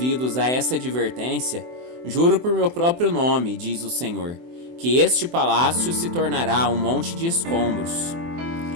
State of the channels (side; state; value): left; late; 24 ms